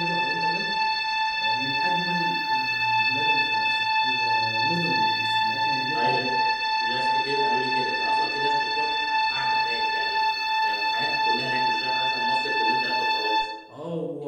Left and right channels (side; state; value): both; identical; correlation 1.00